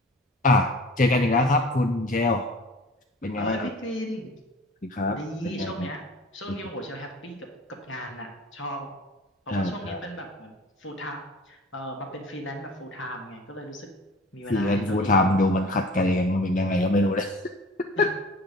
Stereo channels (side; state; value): both; normal; correlation 0.44